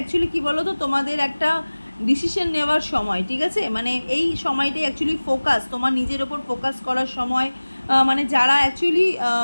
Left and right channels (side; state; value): both; inverted; correlation -1.00